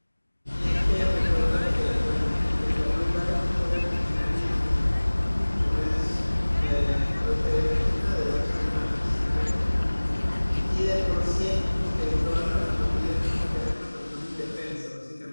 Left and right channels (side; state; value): both; inverted; correlation -1.00